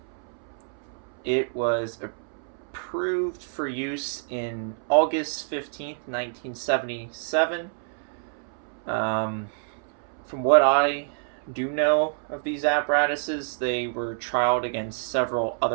It was approved for use in August 15th, 1977. From what I do know of these apparatuses, they were trialed against several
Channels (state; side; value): silent; left; 60 dB below the other